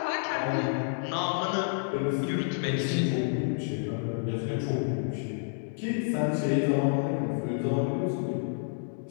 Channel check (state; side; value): silent; right; digital silence